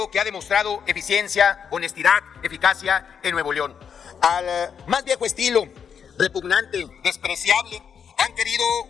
que ha demostrado eficiencia, honestidad, eficacia en Nuevo León. Al más viejo estilo, repugnante, despreciable, han querido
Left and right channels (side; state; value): right; quieter; 7.3 dB